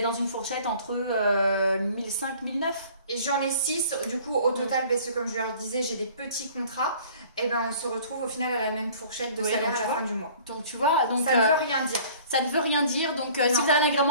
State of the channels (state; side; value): inverted; both; correlation -0.49